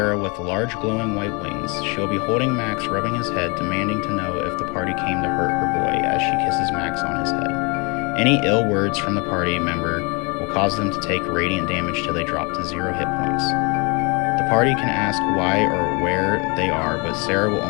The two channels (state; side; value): quieter; right; 30.4 dB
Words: with large glowing white wings. She'll be holding Max, rubbing his head, demanding to know if the party came to hurt her boy as she kisses Max on his head. Any ill words from the party member will cause them to take radiant damage till they drop to 0 hit points. The party can ask why or where they are, but Sarah will